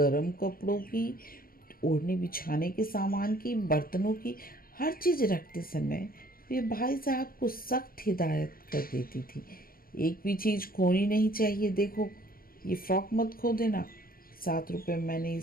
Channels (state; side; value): late; right; 0.42 ms